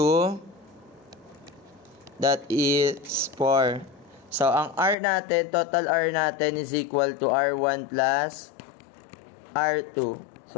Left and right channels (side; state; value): right; drops out; at 5.0 s